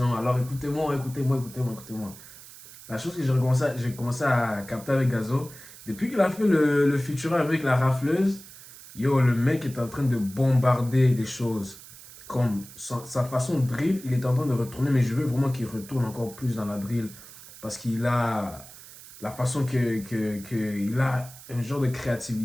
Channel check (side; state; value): right; noise; hiss, 18 dB below the sound